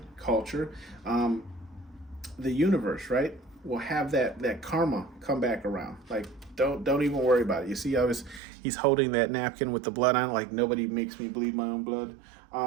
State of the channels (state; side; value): drops out; left; at 8.4 s